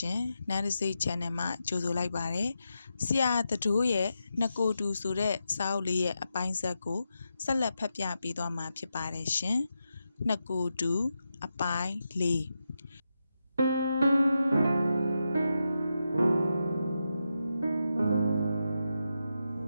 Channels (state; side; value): inverted; both; correlation -0.87